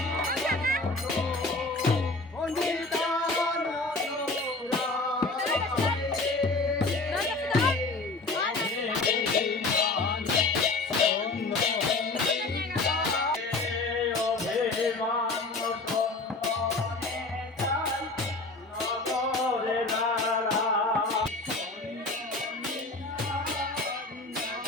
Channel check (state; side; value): quieter; right; 3.4 dB